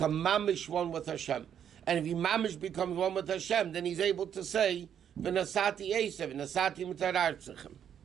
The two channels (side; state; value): left; quieter; 8.9 dB